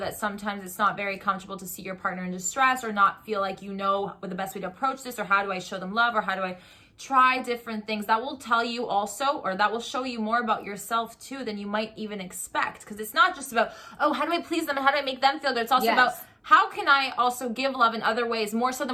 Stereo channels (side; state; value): both; identical; correlation 1.00